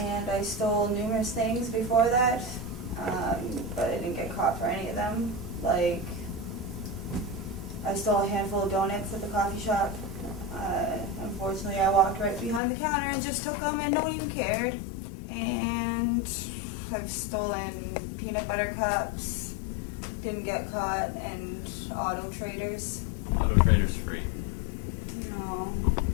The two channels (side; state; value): right; drops out; at 12.6 s